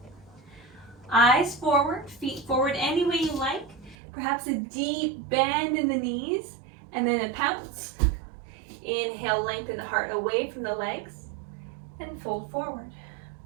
Eyes forward, feet forward any way you like. Perhaps a deep bend in the knees and then a pounce. Inhale, lengthen the heart away from the legs and fold forward.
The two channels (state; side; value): drops out; left; at 4.0 s